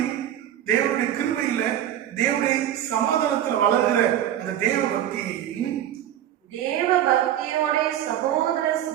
தேவனுடைய கிருபையில தேவனுடைய சமாதானத்துல வளர்கிற அந்த தேவ பக்தியையும். தேவ பக்தியோட சகோதர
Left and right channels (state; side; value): quieter; left; 11.4 dB